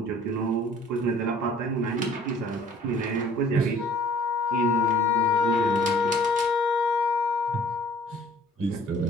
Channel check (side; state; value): both; normal; correlation 0.52